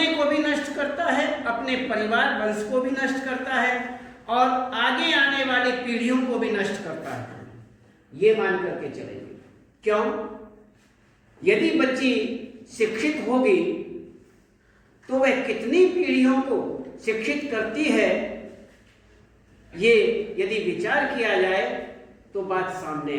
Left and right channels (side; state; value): both; identical; correlation 1.00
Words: को भी नष्ट करता है, अपने परिवार वंश को भी नष्ट करता है और आगे आने वाली पीढ़ियों को भी नष्ट करता है, ये मान करके चलेंगे। क्यों? यदि बच्ची शिक्षित होगी तो वह कितनी पीढ़ियों को शिक्षित करती है, ये यदि विचार किया जाए तो बात सामने